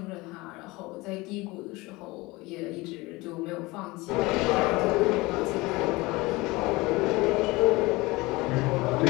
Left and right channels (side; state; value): right; quieter; 22.3 dB